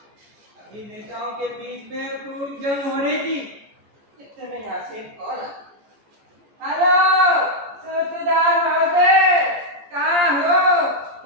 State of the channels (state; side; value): late; left; 14 ms